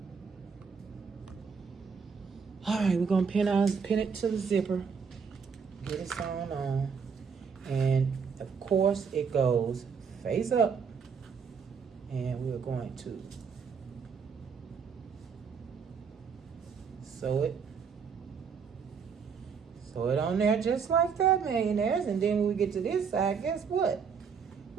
All right, we're gonna pin it to the zipper, get it sewn on, and of course it goes face up, and we're going to sew it on there just like that, millionaires. And then when we get to this side, guess what?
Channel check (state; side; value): quieter; left; 6.1 dB